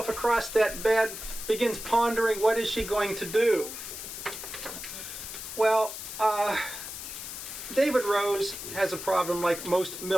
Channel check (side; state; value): left; noise; hiss, 9 dB below the sound